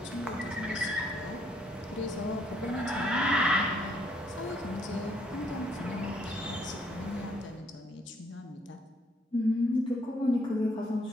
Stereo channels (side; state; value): both; normal; correlation 0.68